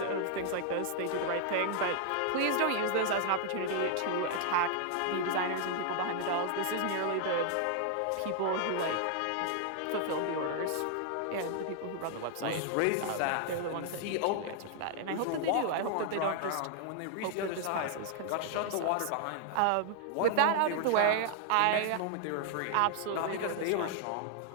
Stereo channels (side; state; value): both; different; correlation 0.00